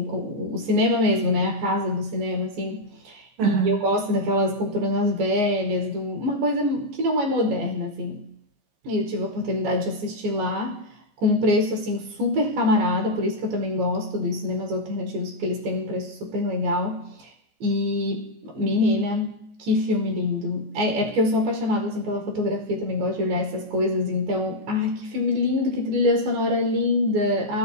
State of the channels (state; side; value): late; left; 14 ms